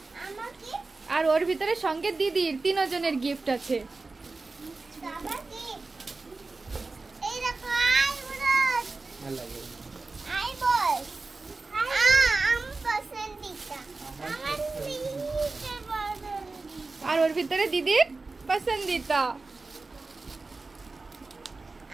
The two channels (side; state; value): left; quieter; 3.7 dB